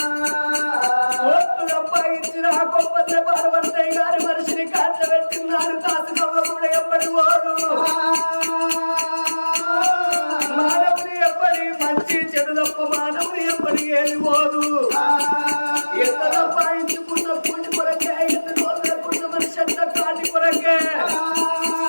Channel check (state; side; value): inverted; both; correlation -1.00